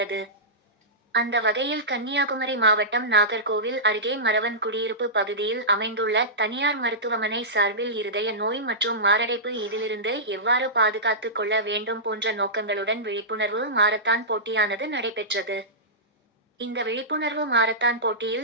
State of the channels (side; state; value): both; normal; correlation -0.16